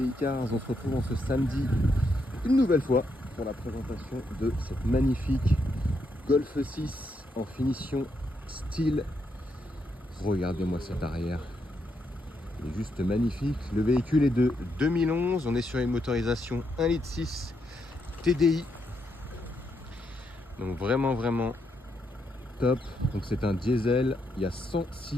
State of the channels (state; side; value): normal; both; correlation 0.79